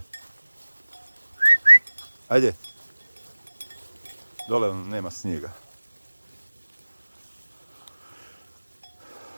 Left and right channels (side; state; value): both; inverted; correlation -1.00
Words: Ajde. Dole nema snijega.